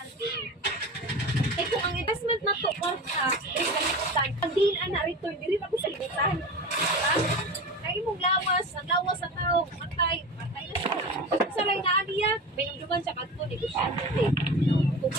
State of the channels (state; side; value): normal; both; correlation 0.30